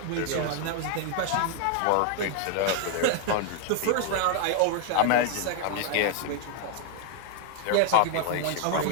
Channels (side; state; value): both; different; correlation 0.00